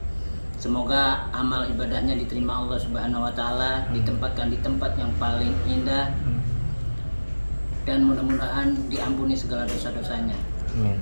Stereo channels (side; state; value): both; inverted; correlation -1.00